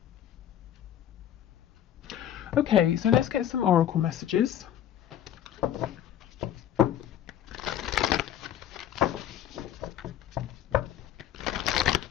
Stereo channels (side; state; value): right; quieter; 11.1 dB